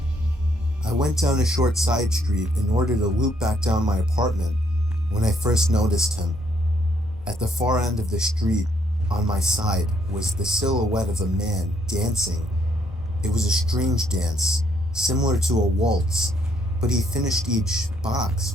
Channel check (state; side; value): normal; both; correlation 0.70